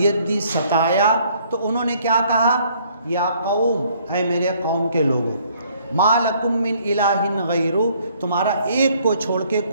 दी, सताया, तो उन्होंने क्या कहा, या कौम, ऐ मेरे कौम के लोगों, मा लकुम मिन इलाहिन गैरु, तुम्हारा एक को छोड़ के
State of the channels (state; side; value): inverted; both; correlation -0.63